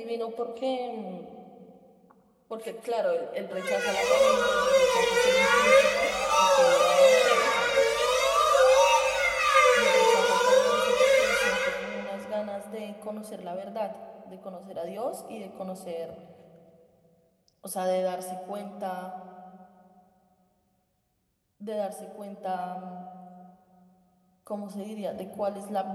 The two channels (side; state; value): both; identical; correlation 1.00